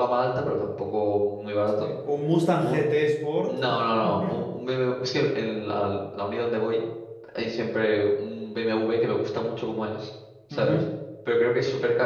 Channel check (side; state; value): both; identical; correlation 1.00